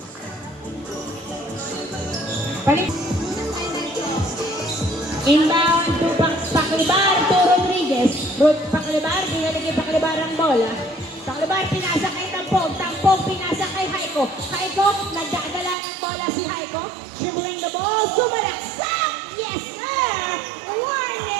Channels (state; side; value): drops out; left; at 15.8 s